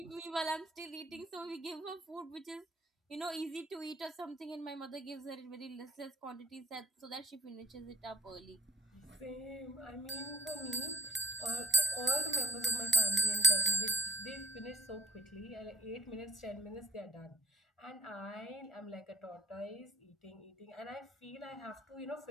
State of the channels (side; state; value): both; normal; correlation 0.40